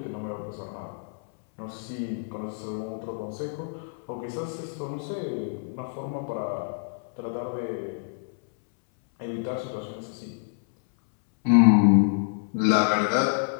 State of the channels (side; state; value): right; silent; 60 dB below the other